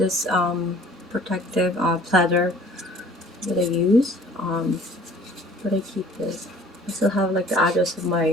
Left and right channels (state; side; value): normal; both; correlation 0.51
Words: protective platter that I use. But I keep this. I still have like the address of